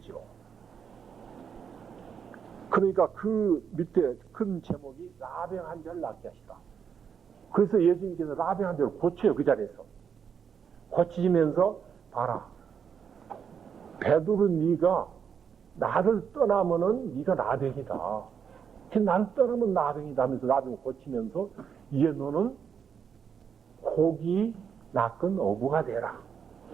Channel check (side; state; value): left; quieter; 7.2 dB